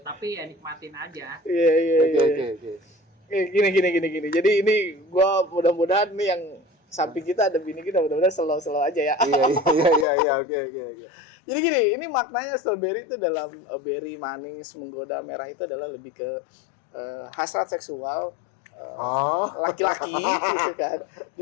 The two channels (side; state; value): right; drops out; at 10.1 s